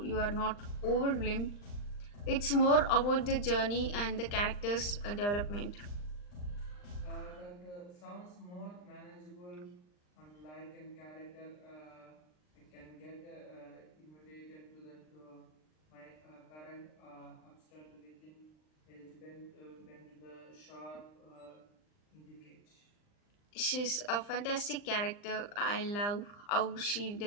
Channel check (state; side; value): late; right; 39 ms